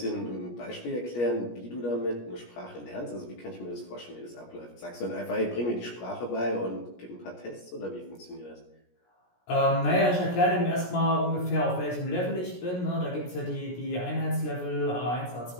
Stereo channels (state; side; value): late; right; 17 ms